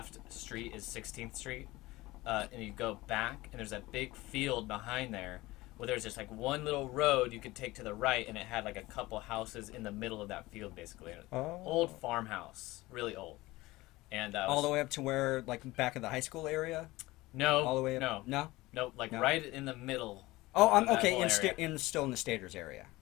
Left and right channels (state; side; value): quieter; right; 19.6 dB